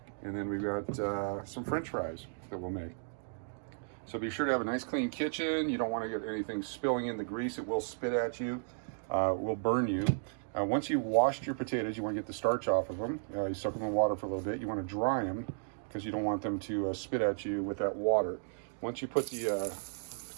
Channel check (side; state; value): left; silent; digital silence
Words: And then we've got some French fries that we'll make. So be sure to have a nice clean kitchen. You don't want to get anything spilling in the grease. It will spit at you. It will burn you. Once you've washed your potatoes, you want to get the starch off of them. You soak them in water for a little bit. You want to dry them because you don't want them to spit at you with that water. Once you put the